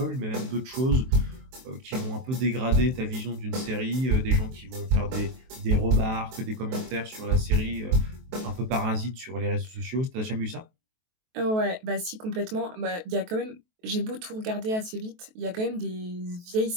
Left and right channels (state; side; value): late; left; 23 ms